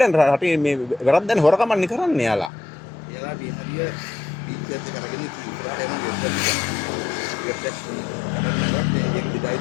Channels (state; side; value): drops out; right; at 2.5 s